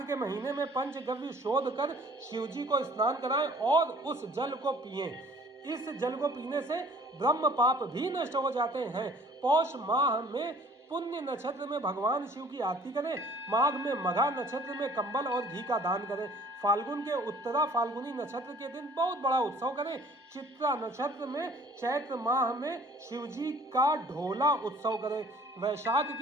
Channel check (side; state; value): both; normal; correlation 0.53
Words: महीने में पंचगव्य शोध कर शिवजी को स्नान कराएं और उस जल को पिएं। इस जल को पीने से ब्रह्म पाप भी नष्ट हो जाते हैं। पौष माह में पुण्य नक्षत्र में भगवान शिव की आरती करें। माघ में मघा नक्षत्र में कंबल और घी का दान करें। फाल्गुन के उत्तरा फाल्गुनी नक्षत्र के दिन बहुत बड़ा उत्सव करें। चित्रा नक्षत्र में चैत्र माह में शिवजी का ढोला उत्सव करें। वैशाख